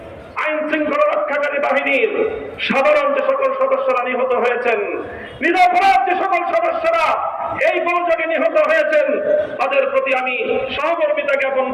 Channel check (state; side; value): identical; both; correlation 1.00